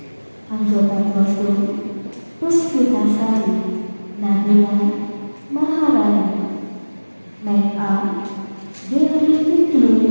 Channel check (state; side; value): inverted; both; correlation -1.00